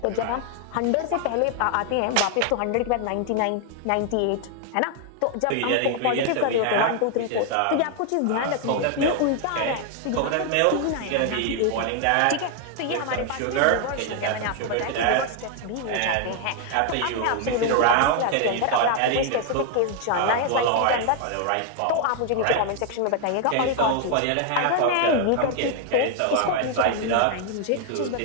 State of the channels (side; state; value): both; different; correlation 0.00